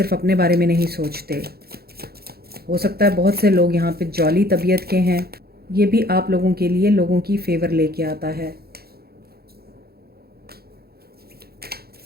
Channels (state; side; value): late; left; 0.45 ms